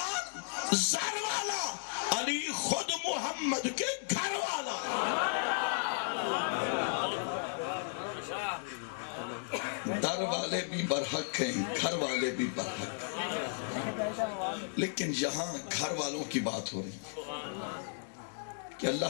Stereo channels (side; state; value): right; silent; digital silence